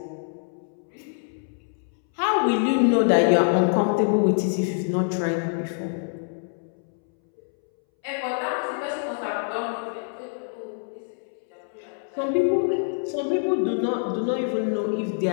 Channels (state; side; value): silent; right; 61 dB below the other